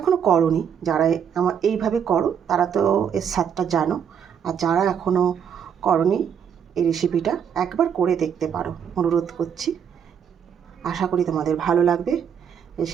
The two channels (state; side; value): quieter; left; 7.9 dB